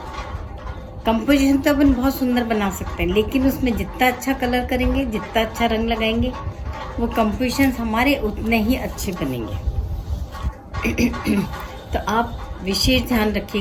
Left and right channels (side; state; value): both; identical; correlation 1.00